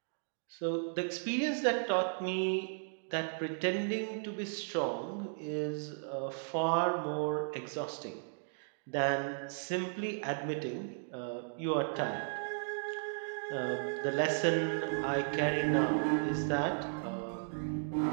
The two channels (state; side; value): silent; left; digital silence